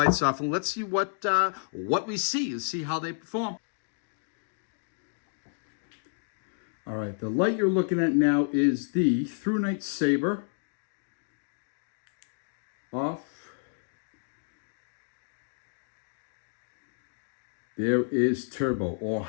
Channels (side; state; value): right; silent; digital silence